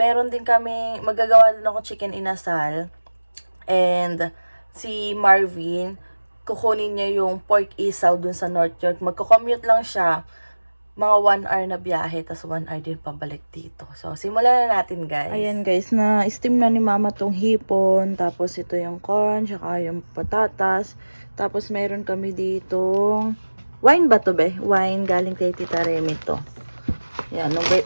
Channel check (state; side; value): inverted; both; correlation -1.00